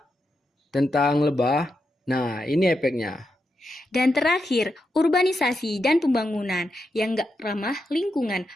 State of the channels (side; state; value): both; normal; correlation 0.85